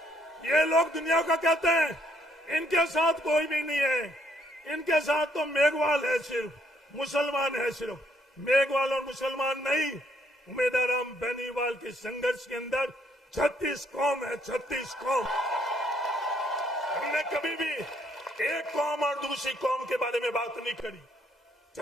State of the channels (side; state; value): both; normal; correlation 0.69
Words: ये लोग दुनिया का कहते हैं, इनके साथ कोई भी नहीं है, इनके साथ तो मेघवाल है, सिर्फ मुसलमान है, सिर्फ मेघवाल और मुसलमान नहीं। उम्मीदवार राम बेनीवाल के संघर्ष के अंदर 36 कौम है, 36 कौम। हमने कभी भी एक कौम और दूसरी कौम के बारे में बात नहीं करी।